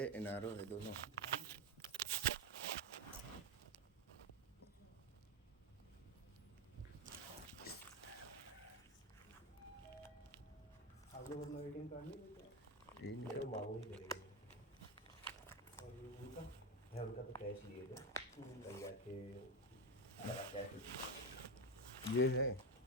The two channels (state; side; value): normal; both; correlation 0.11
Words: NRO है, दोनों। आप लोग अपना ATM कार्ड नहीं लेते हैं? ये मेरे निकल को मांगू ही करेंगे। और ये उनका? मैं उनका तो कैश लिए थे, कल जाके लगा कैश। ये है,